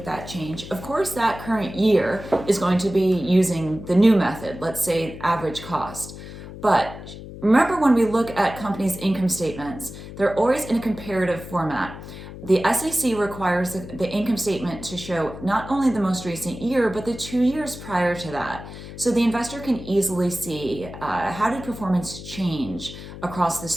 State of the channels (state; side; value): noise; left; hum, 13 dB below the sound